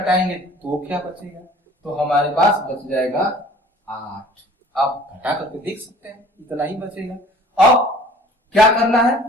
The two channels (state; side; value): normal; both; correlation 0.50